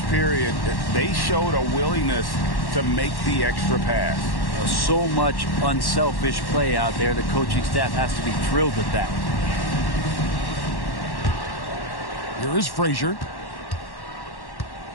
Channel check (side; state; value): right; late; 1.1 ms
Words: period, they showed a willingness to make the extra pass. So much unselfish play out there. The coaching staff has to be thrilled with that. Here is Frazier.